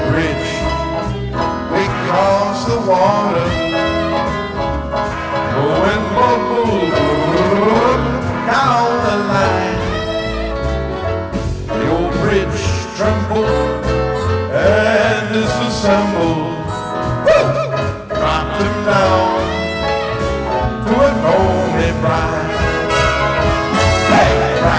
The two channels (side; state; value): both; identical; correlation 1.00